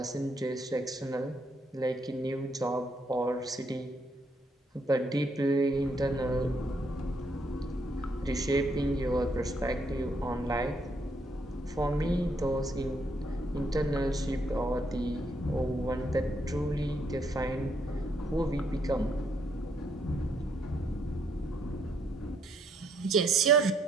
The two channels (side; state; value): both; normal; correlation 0.73